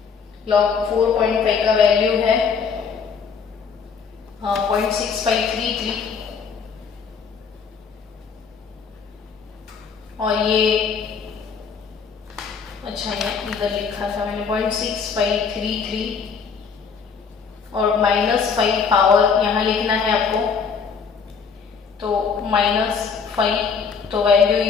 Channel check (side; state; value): right; quieter; 6.0 dB